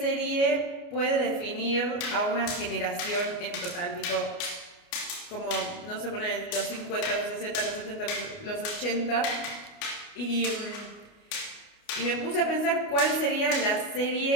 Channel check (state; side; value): late; right; 29 ms